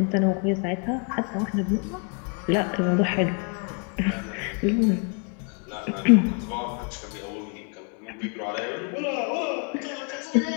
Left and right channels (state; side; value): quieter; right; 37.2 dB